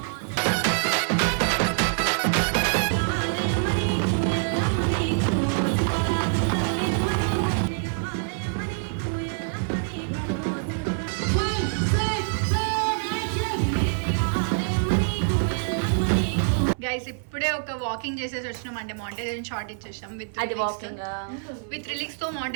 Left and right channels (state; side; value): silent; left; 58 dB below the other